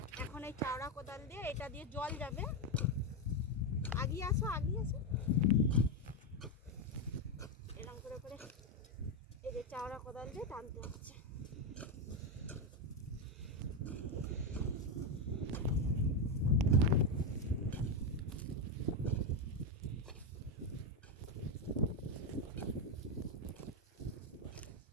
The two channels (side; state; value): both; normal; correlation 0.07